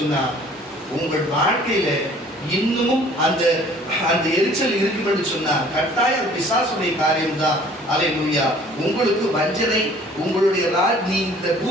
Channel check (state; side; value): normal; both; correlation 0.53